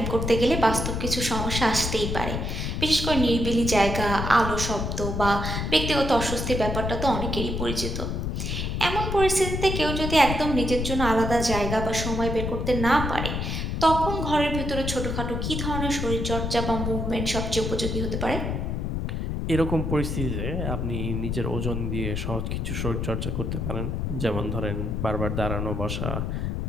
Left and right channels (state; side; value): noise; left; rumble, 2 dB below the sound